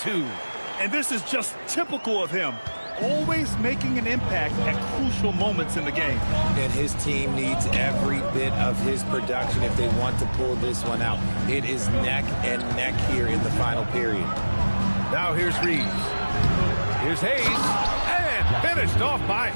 And this is just typical of him. Always making an impact at crucial moments in the game. And his team needs every bit of his production if they want to pull this one out. It is neck and neck here in the final period. Now here's Reeves. Here's Hayes. And finished off by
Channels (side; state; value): both; inverted; correlation -1.00